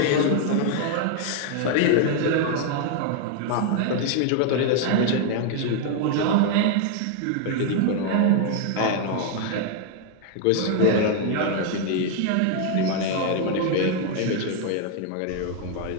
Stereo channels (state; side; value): different; both; correlation 0.00